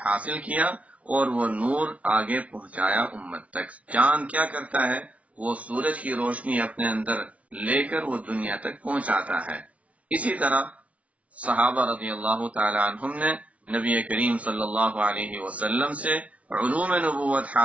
حاصل کیا اور وہ نور آگے پہنچایا امت تک۔ چاند کیا کرتا ہے؟ وہ سورج کی روشنی اپنے اندر لے کر وہ دنیا تک پہنچاتا ہے۔ اسی طرح صحابہ رضی اللہ تعالی عنہم نے نبی کریم صلی اللہ علیہ وسلم سے علوم نبوت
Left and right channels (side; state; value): left; late; 0.065 ms